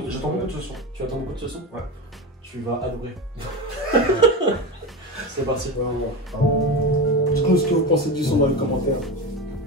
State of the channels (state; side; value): normal; both; correlation 0.21